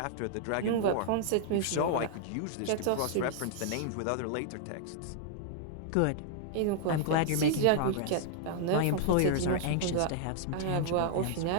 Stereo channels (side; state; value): both; different; correlation -0.01